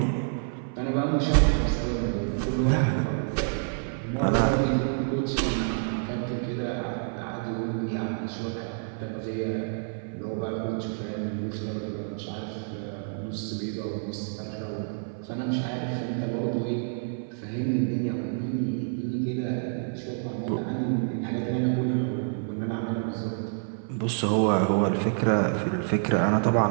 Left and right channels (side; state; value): left; silent; 59 dB below the other